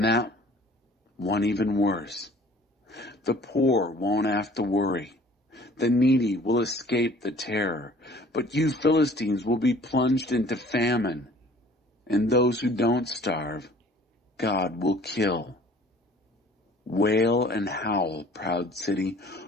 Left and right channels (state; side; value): normal; both; correlation 0.52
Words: one even worse. The poor won't have to worry. The needy will escape the terror, but you Philistines will be plunged into famine, and those who don't starve, God will kill. Wail and howl, proud city.